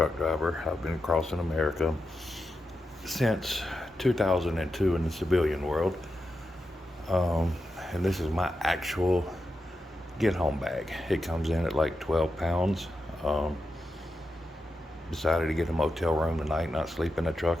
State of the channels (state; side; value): normal; both; correlation 0.88